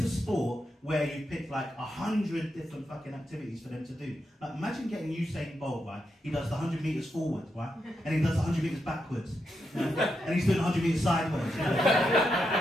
sport where you picked like 100 different fucking activities for them to do. Like, imagine getting Usain Bolt, right? He does the 100 metres forward, right? And he does the 100 metres backwards. You know? And he's doing 100 metres sideways. You know?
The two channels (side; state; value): both; normal; correlation 0.84